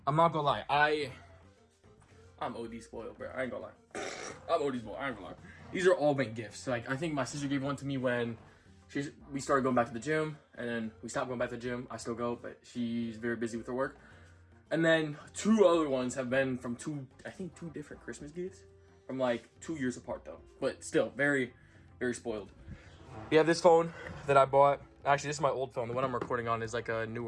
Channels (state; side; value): identical; both; correlation 1.00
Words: I'm not gonna lie, I'm OD spoiled, bro. I ain't gonna lie. I'm OD spoiled. I ain't gonna lie. These are all been gifts. Like, I think my sister gave one to me when we started going back to the gym, and then we stopped going back to the gym. I still go, but she's very busy with her work. And then 2 other ones have been from two different Christmas gifts from like 2 years apart though. But still, very, very spoiled. We have this phone that I bought. Actually, this is my old phone. The one I'm recording on is like a